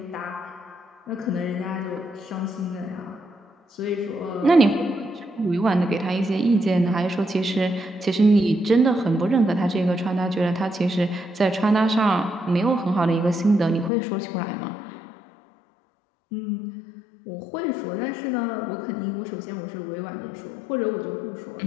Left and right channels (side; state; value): right; drops out; at 13.9 s